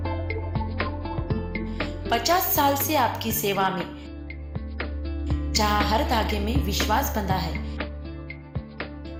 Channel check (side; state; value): both; identical; correlation 1.00